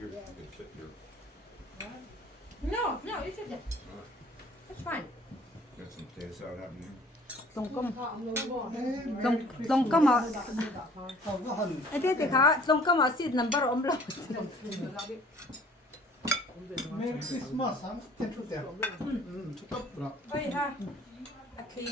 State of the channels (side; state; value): both; normal; correlation 0.53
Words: You can sit here. no you should that's fine Got some potato salad happening here. Long ka ma. Không có hình. Ate ka, long ka ma seed number om lo. Merry Christmas, ha? Ten chút đẹp. Chút tóc rồi. ơi ha